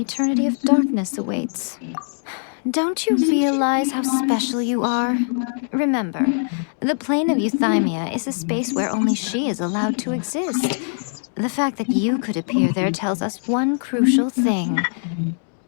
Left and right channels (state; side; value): silent; right; 65 dB below the other